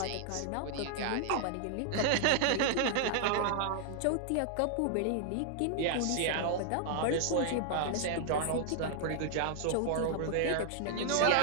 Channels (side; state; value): both; different; correlation 0.00